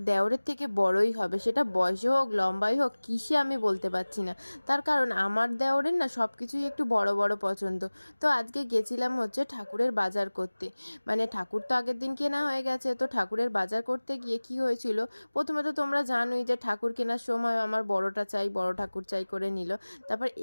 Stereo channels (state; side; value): inverted; both; correlation -1.00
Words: দেওরের থেকে বড়ই হবে, সেটা বয়সে হোক লম্বাই হোক কিসে আমি বলতে পারছি না। তার কারণ আমার দেওরের না সব কিছুই একটু বড় বড় পছন্দ। তো আজকে গেছিলাম হচ্ছে ঠাকুরের বাজার করতে। মানে ঠাকুর তো আগের দিন কেনা হয়ে গেছে, তো ঠাকুরের বাজার করতে গিয়ে কি হয়েছিল, প্রথমে তো তোমরা জানোই যে ঠাকুর কেনার সময় আমার বড়টা চাই, বড় ঠাকুর চাই করে নিল। তারপর